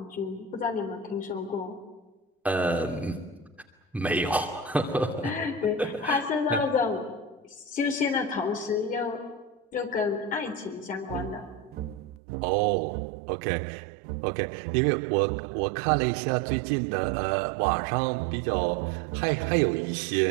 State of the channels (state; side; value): drops out; left; at 12.2 s